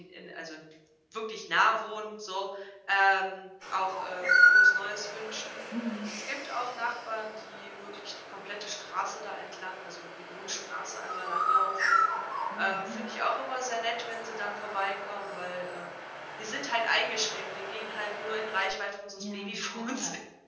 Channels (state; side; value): identical; both; correlation 1.00